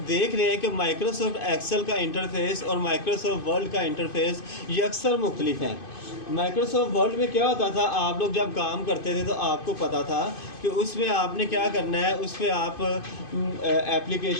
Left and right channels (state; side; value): late; right; 2.5 ms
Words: देख रहे हैं कि माइक्रोसॉफ्ट एक्सेल का इंटरफेस और माइक्रोसॉफ्ट वर्ड का इंटरफेस ये अक्सर मुख्तलिफ हैं। माइक्रोसॉफ्ट वर्ड में क्या होता था, आप लोग जब काम करते थे तो आपको पता था कि उसमें आपने क्या करना है, उस पर आप